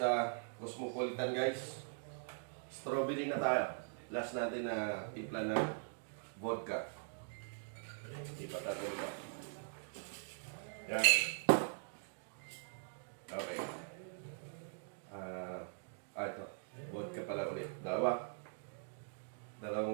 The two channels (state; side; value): silent; left; digital silence